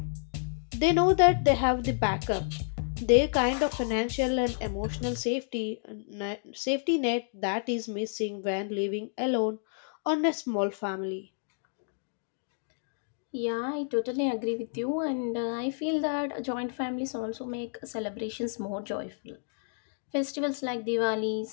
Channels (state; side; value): silent; right; digital silence